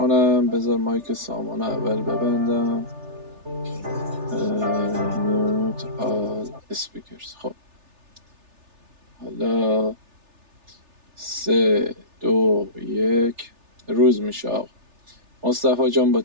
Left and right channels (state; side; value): late; left; 3.3 ms